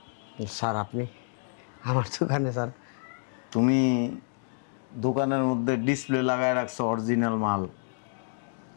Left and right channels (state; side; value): silent; right; digital silence